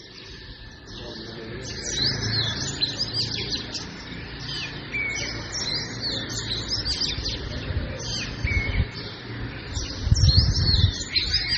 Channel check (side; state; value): both; identical; correlation 1.00